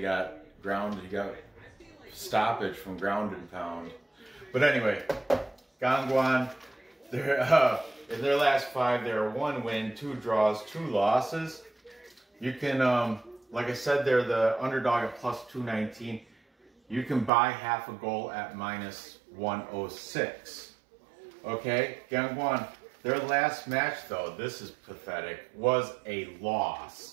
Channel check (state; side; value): drops out; left; at 17.3 s